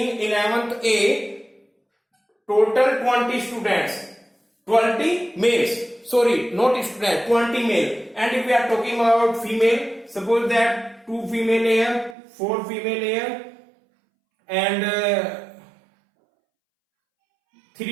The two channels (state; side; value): drops out; left; at 12.2 s